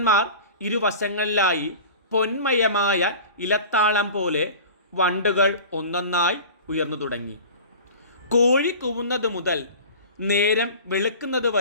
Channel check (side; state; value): both; inverted; correlation -0.38